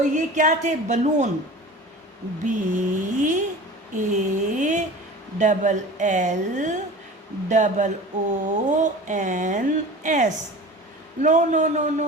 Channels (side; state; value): both; normal; correlation 0.37